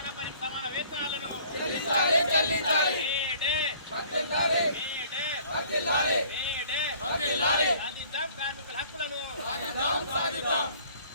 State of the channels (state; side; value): inverted; both; correlation -0.54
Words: పనికి సమాన వేతనాలను మేడే సాధిద్దాం, కార్మికుల హక్కులను.